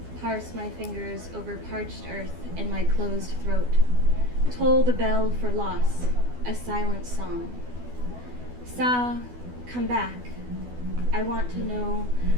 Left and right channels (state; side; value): late; left; 12 ms